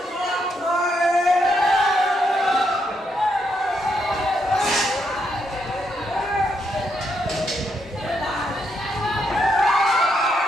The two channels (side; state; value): both; normal; correlation 0.78